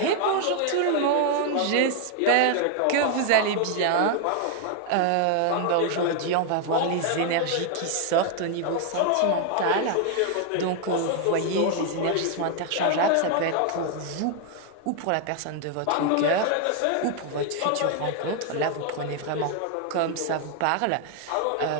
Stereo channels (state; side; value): different; both; correlation 0.00